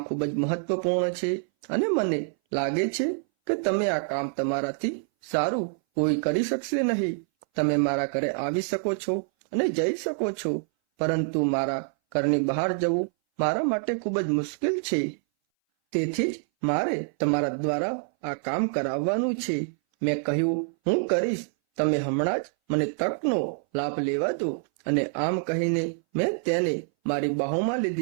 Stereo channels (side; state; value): left; silent; 59 dB below the other